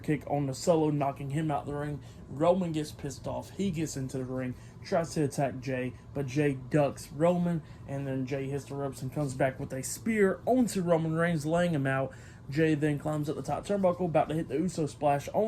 on the Solo, knocking him out the ring. Roman gets pissed off. He gets into the ring, tries to attack Jey, but Jey ducks Roman, and then Jey hits the ropes and comes back with a spear onto Roman Reigns, laying him out. Jey then climbs up the top turnbuckle, about to hit the Uso splash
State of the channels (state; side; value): identical; both; correlation 1.00